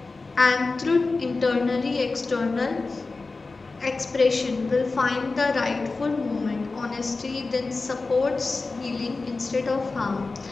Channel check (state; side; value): quieter; right; 3.8 dB